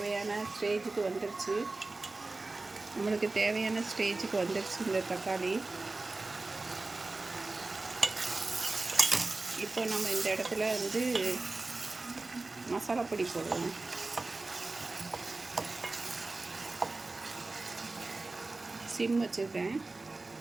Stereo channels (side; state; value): left; quieter; 3.4 dB